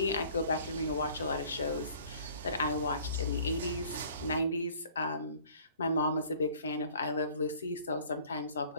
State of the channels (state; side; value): inverted; both; correlation -0.53